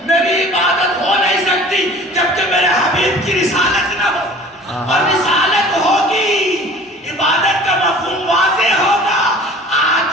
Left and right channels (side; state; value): both; normal; correlation 0.45